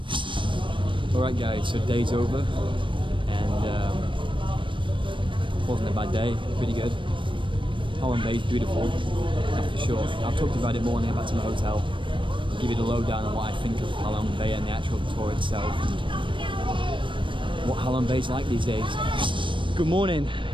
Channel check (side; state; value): left; late; 0.24 ms